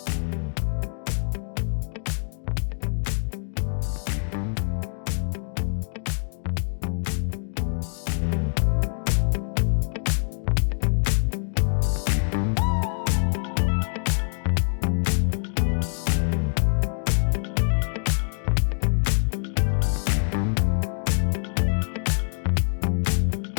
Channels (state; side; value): silent; right; digital silence